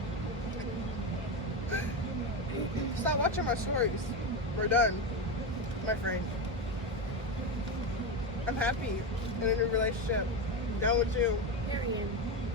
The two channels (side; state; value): both; normal; correlation 0.14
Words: Stop watching my stories. We're done, my friend. I'm happy in a new relationship. Done with you. Period.